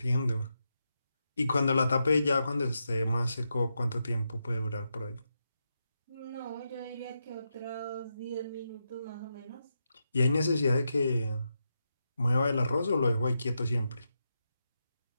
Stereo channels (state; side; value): inverted; both; correlation -0.86